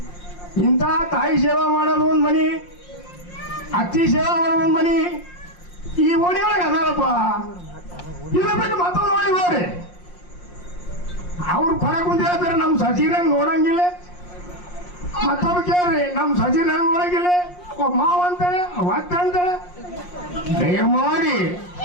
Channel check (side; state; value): right; late; 5.6 ms